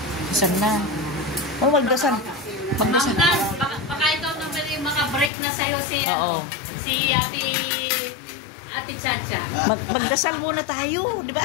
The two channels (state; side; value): drops out; right; at 5.3 s